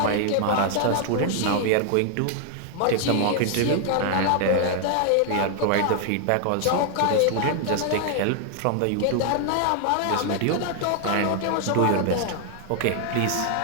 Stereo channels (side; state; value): both; different; correlation 0.00